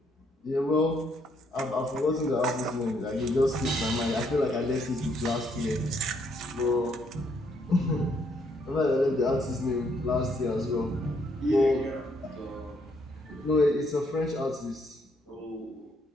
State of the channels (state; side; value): normal; both; correlation 0.71